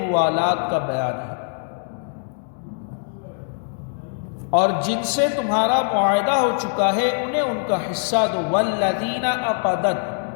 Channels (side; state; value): right; silent; 61 dB below the other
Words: کا بیان ہے، اور جن سے تمہارا معاہدہ ہو چکا ہے انہیں ان کا حصہ دو۔ والذین